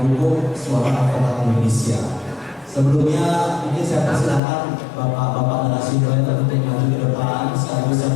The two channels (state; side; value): drops out; right; at 4.4 s